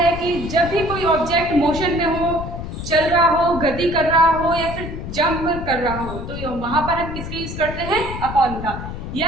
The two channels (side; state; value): left; noise; rumble, 8 dB below the sound